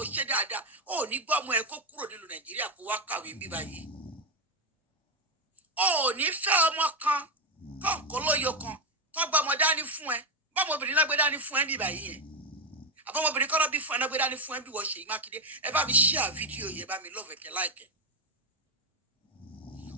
ṣe dáadáa ò ní gbọ́ ọmọ ẹ kó kúrò nílùú Nàìjíríà kó wá kàwé bí báyìí. Ò ní fẹ́ ọmọ kan kọ̀ọ̀kan lóyo kan tó gbọ́ ọmọ dání fún ẹ bọ́mọbìnrin náà gbé dání fún ẹ bí báyìí yẹn àbọ̀mọbìnrin kọ́ lọ́ bí fún ẹ náà gbé dání fún ẹ bí wọ́n Ṣèyí Mákindé ẹ bá mi share fídíò yẹn bá mi love ẹ̀kẹ́ láìkẹ́.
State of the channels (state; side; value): normal; both; correlation 0.09